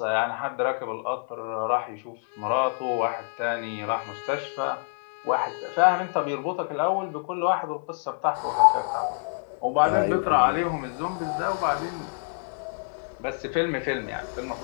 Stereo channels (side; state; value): right; silent; 60 dB below the other